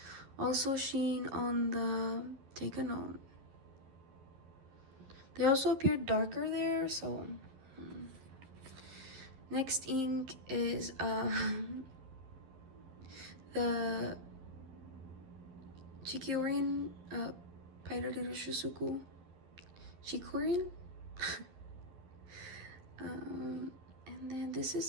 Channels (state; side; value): late; left; 11 ms